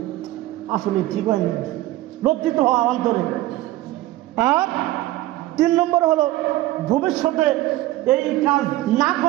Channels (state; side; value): quieter; left; 16.5 dB